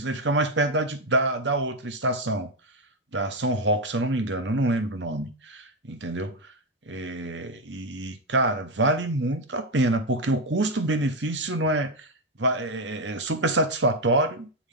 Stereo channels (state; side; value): normal; both; correlation 0.07